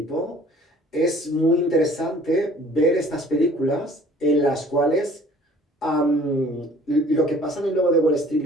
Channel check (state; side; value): normal; both; correlation 0.52